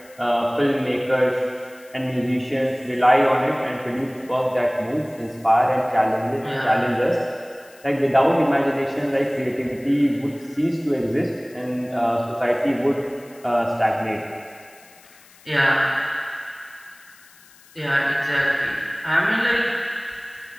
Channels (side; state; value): left; noise; hiss, 26 dB below the sound